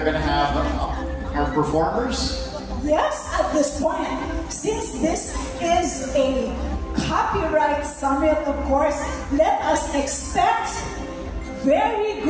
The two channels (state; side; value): identical; both; correlation 1.00